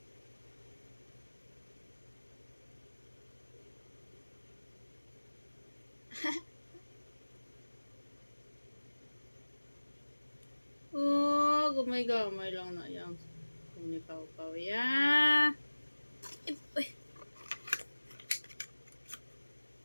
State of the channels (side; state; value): both; inverted; correlation -1.00